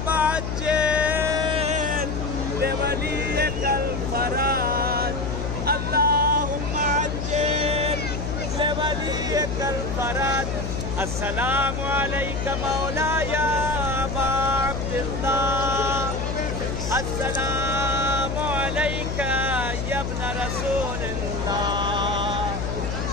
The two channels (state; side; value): noise; left; hum, 3 dB below the sound